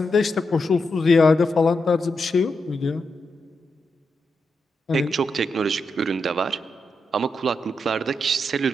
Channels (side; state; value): both; normal; correlation 0.85